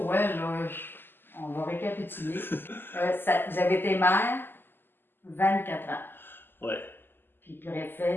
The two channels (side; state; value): right; late; 0.097 ms